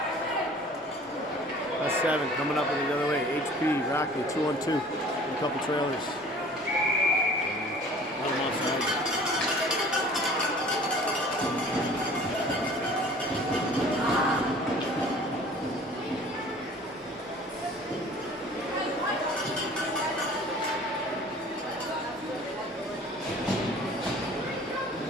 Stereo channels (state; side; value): normal; both; correlation 0.48